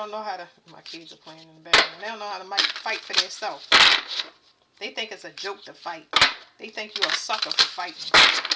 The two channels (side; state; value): both; identical; correlation 1.00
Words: know how to. My kids are playing in the background. They don't know how to fight for themselves. They think it's a joke to fight. They think you're a sucker for fighting.